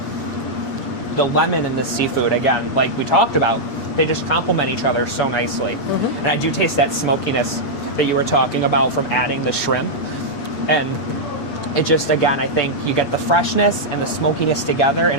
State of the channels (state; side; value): late; right; 8.4 ms